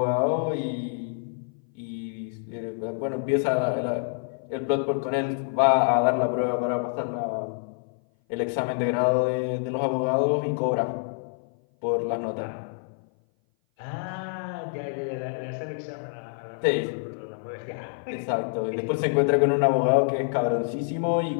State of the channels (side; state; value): right; silent; 57 dB below the other